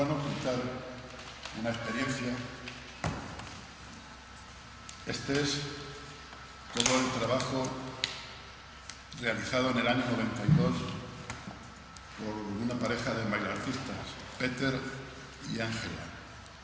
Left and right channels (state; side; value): identical; both; correlation 1.00